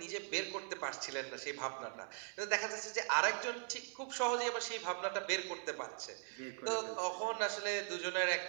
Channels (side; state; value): left; silent; 51 dB below the other